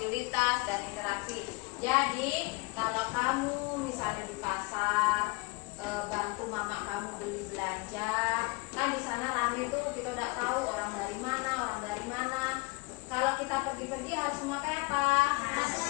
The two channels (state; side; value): quieter; right; 27.5 dB